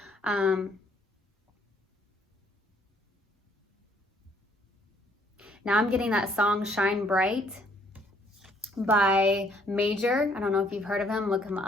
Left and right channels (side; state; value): both; normal; correlation 0.64